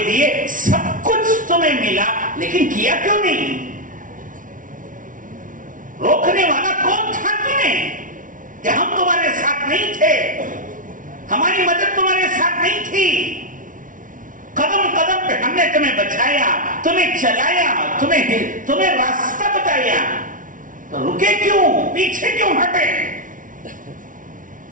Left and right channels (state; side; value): late; left; 0.38 ms